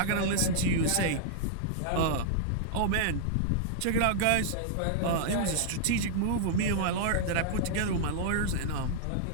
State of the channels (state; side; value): different; both; correlation -0.01